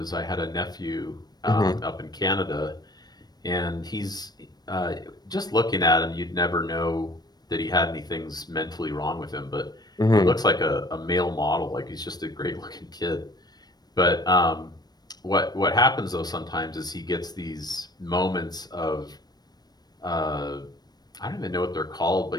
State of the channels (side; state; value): right; late; 0.19 ms